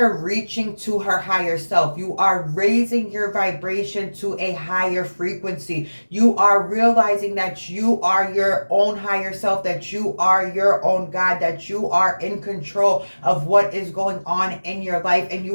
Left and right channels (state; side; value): inverted; both; correlation -1.00